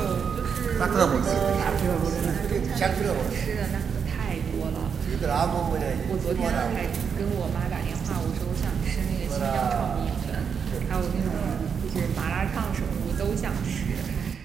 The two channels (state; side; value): quieter; left; 6.7 dB